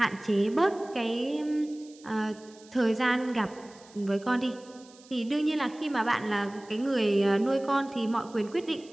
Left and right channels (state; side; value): noise; right; hiss, 25 dB below the sound